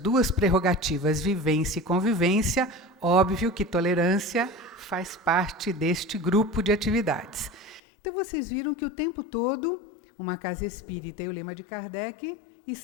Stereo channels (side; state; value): right; drops out; at 7.8 s